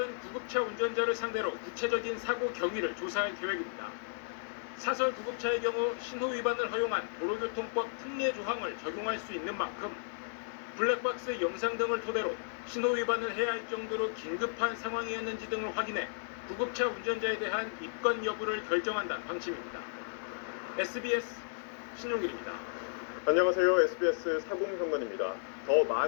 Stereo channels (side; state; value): right; silent; digital silence